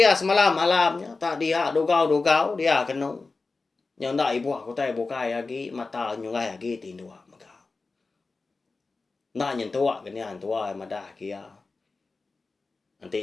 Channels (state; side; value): quieter; right; 3.9 dB